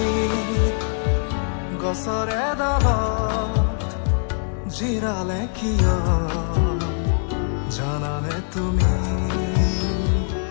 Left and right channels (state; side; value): silent; right; 64 dB below the other